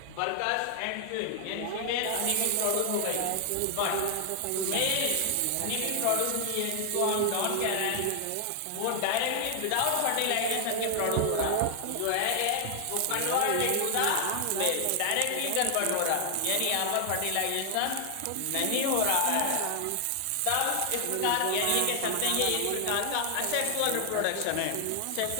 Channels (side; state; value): both; different; correlation 0.00